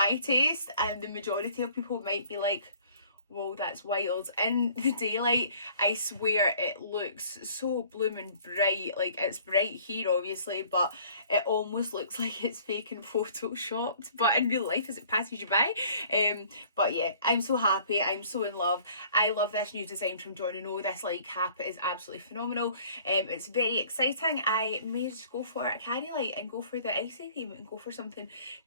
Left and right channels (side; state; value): both; inverted; correlation -0.54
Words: taste, and the majority of people might be like, whoa, that's wild. In the daylight, I swear it looks so blooming bright. Like, it's bright here obviously, but it almost looks like it's fake and photoshopped, but in real life as it passes you by. But yeah, I'm so happy. I'm so in love. I love this new design from Jon Renau. This light cap is absolutely phenomenal. It's very exciting. I may just go for a carry light and go for the icy theme and go for something